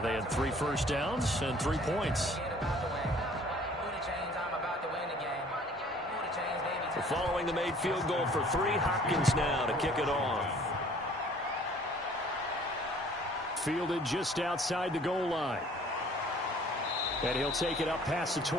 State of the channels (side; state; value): both; normal; correlation 0.54